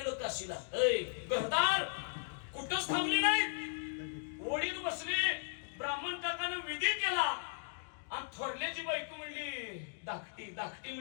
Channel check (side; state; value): right; silent; digital silence